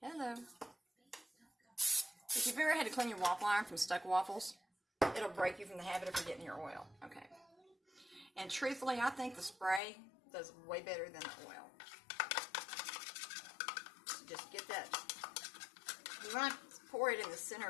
hello. If you've ever had to clean your waffle iron from stuck waffles, it'll break you from the habit of forgetting your oil. Okay. And truthfully, I think the spray does way better than the oil. So just get that. You want to pour it in the center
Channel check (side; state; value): right; drops out; at 9.8 s